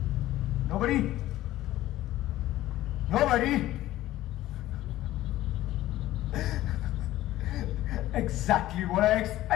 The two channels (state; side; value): quieter; right; 15.0 dB